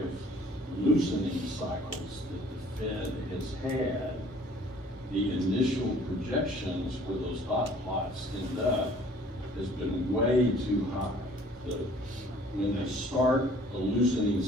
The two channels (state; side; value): normal; both; correlation 0.54